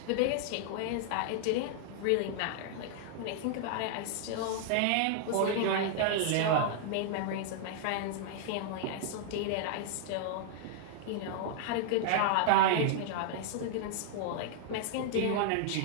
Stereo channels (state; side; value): different; both; correlation -0.01